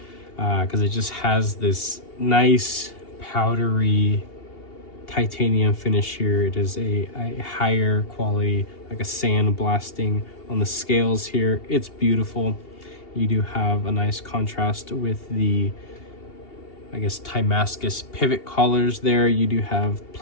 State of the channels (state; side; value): late; right; 2.8 ms